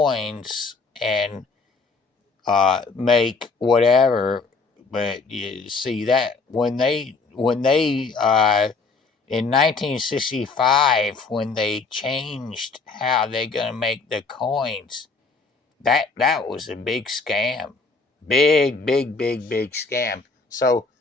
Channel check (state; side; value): quieter; right; 4.2 dB